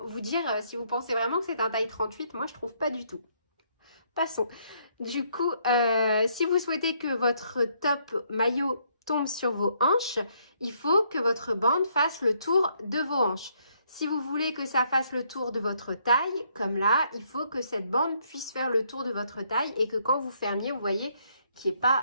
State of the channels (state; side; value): inverted; both; correlation -0.70